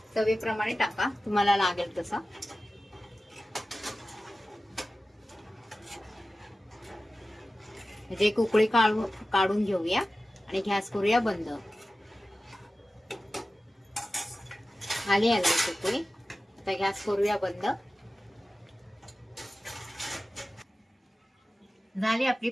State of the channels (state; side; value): normal; both; correlation 0.95